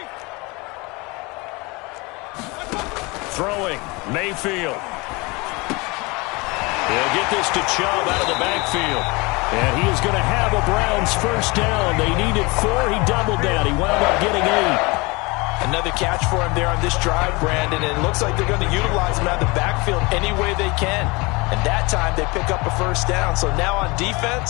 Throwing, Mayfield. He'll get this to Chubb out of the backfield. And he is going to have a Browns first down. They needed 4. He doubled down. He wound up getting 8. Another catch for him there on this drive, Brandon. And it looks like they're going to utilize him out of the backfield any way they can. And that time they pick up a first down. So now on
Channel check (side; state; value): right; quieter; 25.9 dB